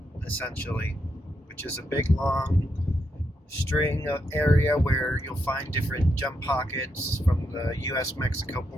essentially, which is a big long string of area where you'll find different gem pockets from the US-Mexico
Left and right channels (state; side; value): normal; both; correlation 0.81